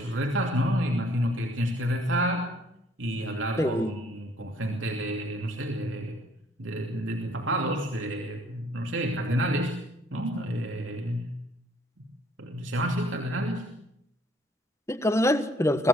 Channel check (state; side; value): normal; both; correlation 0.62